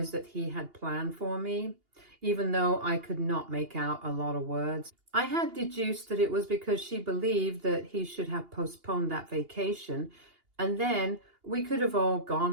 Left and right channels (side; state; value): left; late; 2.8 ms